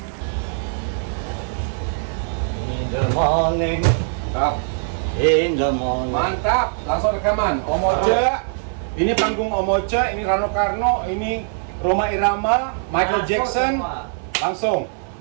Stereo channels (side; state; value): left; silent; 57 dB below the other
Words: In the morning. Mantap. In the morning. Mantap, langsung rekaman. Om Ocha, ini panggung Om Ocha, ini Rano Karno, ini Rhoma Irama, Michael Masuk Jackson. semua. Langsung,